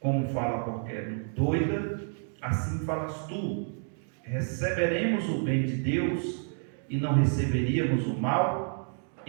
fala qualquer doida, assim falas tu. Receberemos o bem de Deus e não receberíamos o mal?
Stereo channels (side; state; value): left; silent; 55 dB below the other